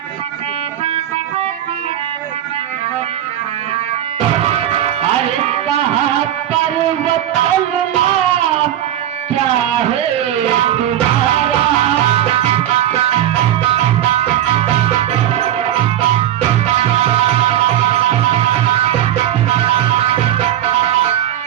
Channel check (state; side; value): quieter; left; 11.8 dB